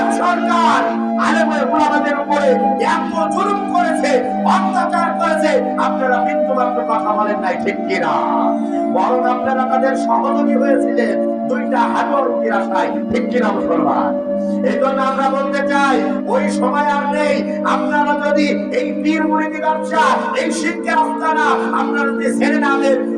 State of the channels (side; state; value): both; identical; correlation 1.00